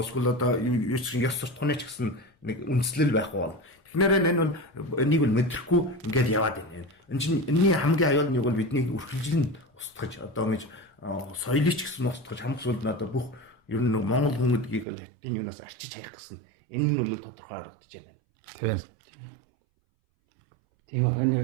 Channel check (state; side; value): drops out; left; at 14.9 s